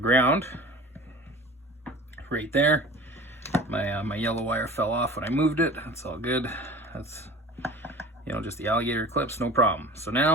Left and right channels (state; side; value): normal; both; correlation 0.39